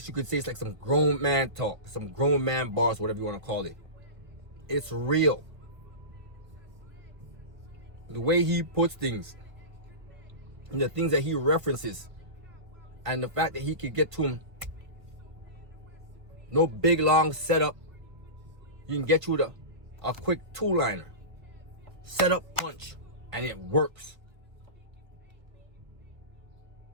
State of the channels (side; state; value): left; late; 1.3 ms